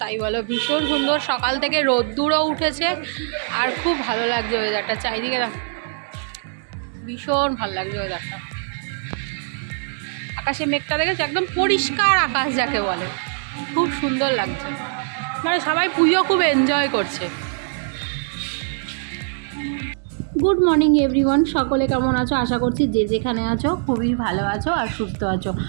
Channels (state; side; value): silent; left; digital silence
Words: তাই বলো, ভীষণ সুন্দর। সকাল থেকে রোদ্দুরও উঠেছে আর খুব ভালো লাগছে ওয়েদারটা। চারিদিকে ভীষণ ভালো লাগছে ওয়েদারটা। আকাশে মেঘটা দেখেছে, একদম পরিষ্কার আকাশ যাকে বলে, খুব সুন্দর লাগছে। মানে সবাই পুজো খুব এনজয় করছে। গুড মর্নিং এভরিওয়ান, সকলে কেমন আছো? আশা করছি যে যেখানে আছো খুবই ভালো আছো আর সুস্থ আছো।